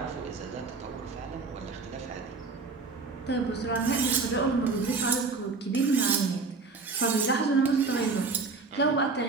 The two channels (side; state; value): left; quieter; 4.1 dB